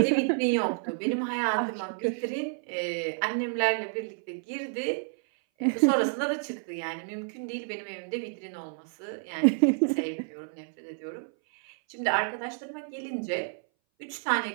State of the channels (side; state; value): left; silent; 58 dB below the other